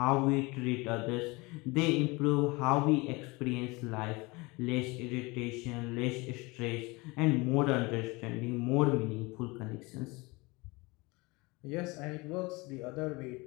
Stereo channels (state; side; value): quieter; right; 24.9 dB